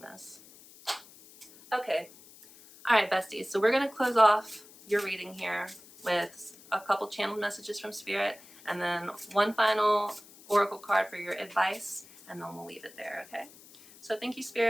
this. Okay. All right, besties. So we're going to close off your reading here with a couple channeled messages from Spirit, and then one final oracle card for your advice, and then we'll leave it there, okay? So thank you,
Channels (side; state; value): left; noise; hiss, 22 dB below the sound